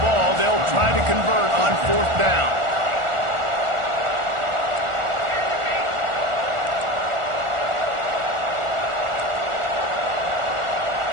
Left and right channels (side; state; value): left; late; 1.4 ms